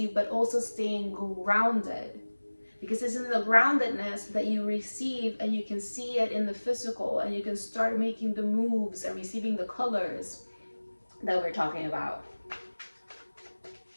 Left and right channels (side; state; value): both; inverted; correlation -1.00